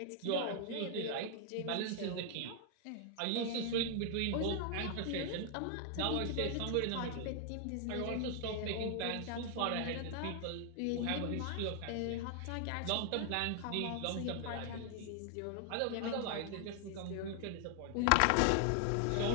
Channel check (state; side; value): different; both; correlation 0.00